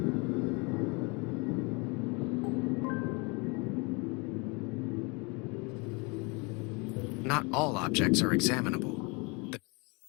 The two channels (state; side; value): quieter; right; 30.0 dB